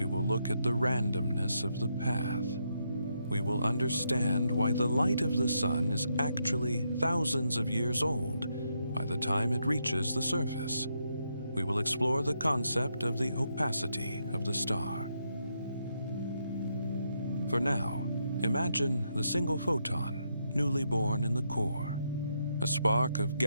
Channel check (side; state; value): both; inverted; correlation -0.79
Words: will look at the randomness of the path. We will understand why the light of the sun is actually thousands of years old by the time it reaches the surface. We will explore the concept of the opacity of the star. For now, imagine the single photon, newly born in the core, a spark of